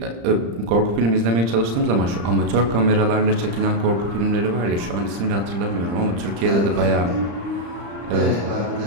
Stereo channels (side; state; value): left; late; 35 ms